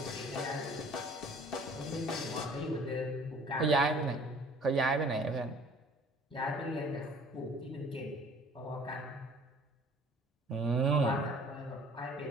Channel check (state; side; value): normal; both; correlation 0.52